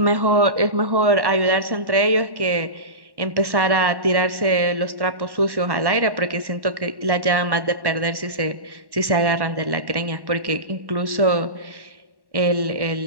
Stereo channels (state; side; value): late; left; 1.1 ms